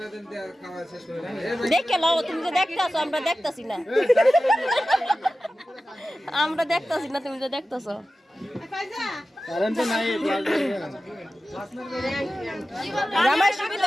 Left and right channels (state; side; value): normal; both; correlation 0.94